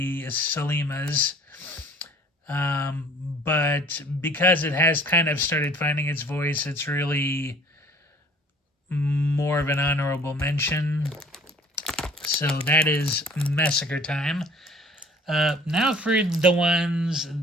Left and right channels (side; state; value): both; normal; correlation 0.51